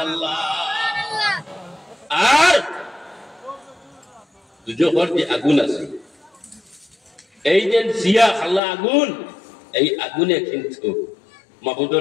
আর দুজোহর যে আগুন আছে, এই যে সিয়া খালা আগুন, এই আগুনে কিন্তু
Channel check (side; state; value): right; drops out; at 8.6 s